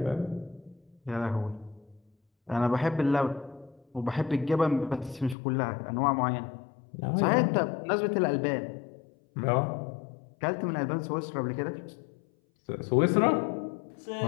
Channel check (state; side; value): drops out; right; at 5.4 s